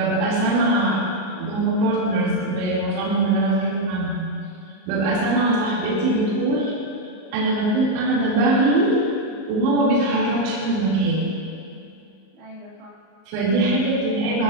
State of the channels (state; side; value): late; left; 38 ms